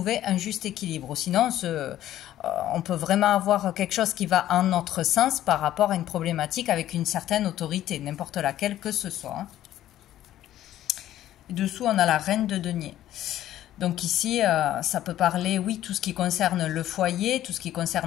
un juste équilibre. Sinon, on peut vraiment avoir quelque chose qui va en notre sens par rapport à une problématique avec une certaine autorité, n'importe laquelle que ce soit, hein. Dessous, on a la reine de denier. Donc ici, ça peut parler, oui, tout ce qui concerne le foyer, tout ce qui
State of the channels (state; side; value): quieter; right; 12.9 dB